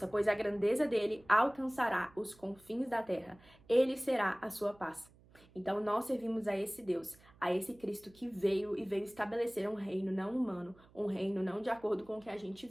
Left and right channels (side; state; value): right; noise; hum, 27 dB below the sound